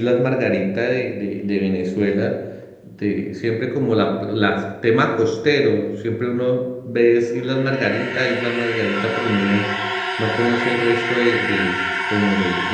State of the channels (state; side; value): identical; both; correlation 1.00